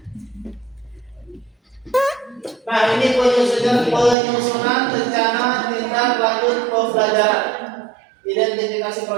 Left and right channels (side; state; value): left; drops out; at 4.2 s